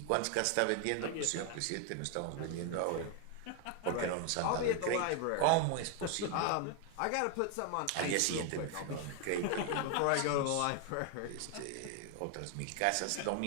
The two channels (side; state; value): both; different; correlation 0.00